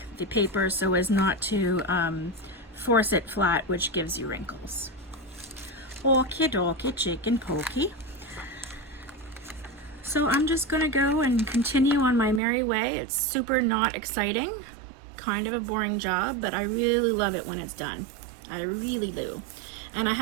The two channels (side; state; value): left; drops out; at 12.4 s